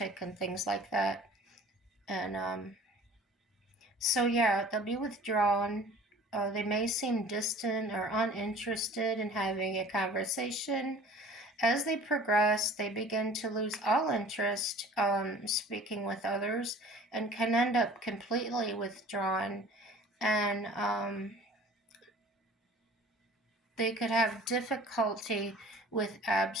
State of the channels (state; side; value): normal; both; correlation 0.46